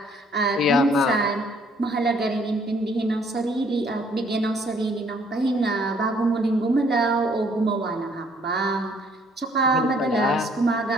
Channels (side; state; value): both; normal; correlation 0.63